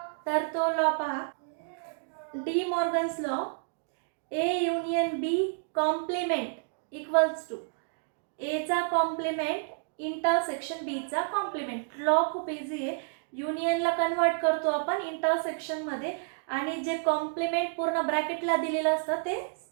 तर तो लॉ पहा, De Morgan's law, A union B complement equals to एचा कॉम्प्लिमेंट इंटरसेक्शन बीचा कॉम्प्लिमेंट. लॉ खूप इझी आहे. युनियनला कन्वर्ट करतो आपण इंटरसेक्शनमध्ये आणि जे कॉम्प्लिमेंट पूर्ण ब्रॅकेटला दिलेलं असतं ते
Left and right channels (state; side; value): silent; left; digital silence